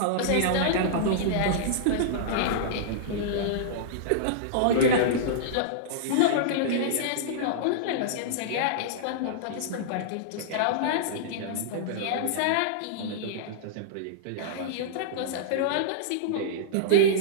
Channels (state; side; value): different; both; correlation -0.02